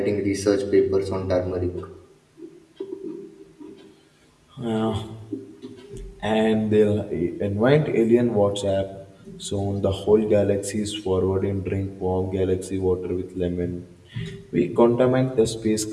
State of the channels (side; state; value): both; identical; correlation 1.00